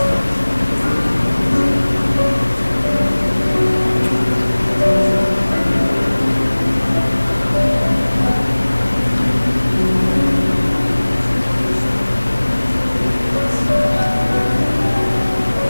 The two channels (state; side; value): inverted; both; correlation -1.00